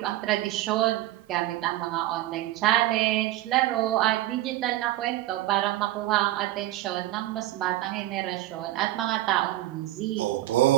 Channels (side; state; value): left; quieter; 15.6 dB